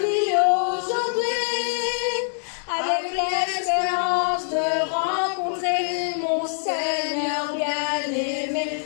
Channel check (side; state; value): right; silent; digital silence